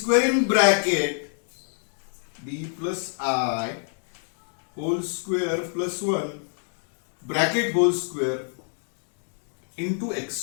in bracket, d plus I whole square plus 1 bracket whole square into x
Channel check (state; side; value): silent; right; 61 dB below the other